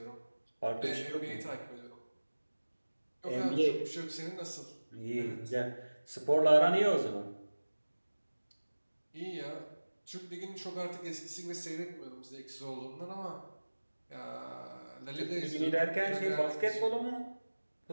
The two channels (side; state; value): both; inverted; correlation -1.00